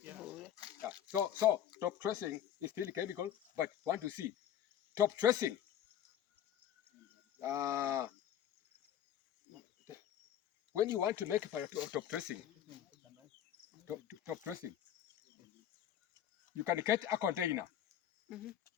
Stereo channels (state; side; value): quieter; right; 10.3 dB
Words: Yeah. Yeah. So top dressing is still chemical, but want to see top dressing. When you want to make top dressing, top dressing, you can get a container